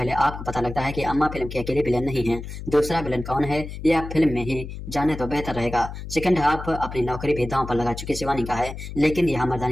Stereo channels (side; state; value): left; noise; hum, 9 dB below the sound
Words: आपको पता लगता है कि अम्मा फिल्म की अकेली विलेन नहीं है। दूसरा विलेन कौन है यह आप फिल्म में ही जाने तो बेहतर रहेगा। सेकंड हाफ अपनी नौकरी भी दांव पर लगा चुकी शिवानी का है, लेकिन यहाँ